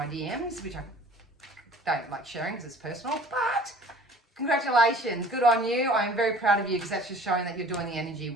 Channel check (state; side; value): normal; both; correlation 0.48